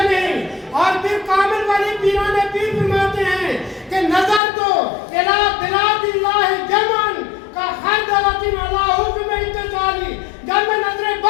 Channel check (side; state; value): right; drops out; at 4.4 s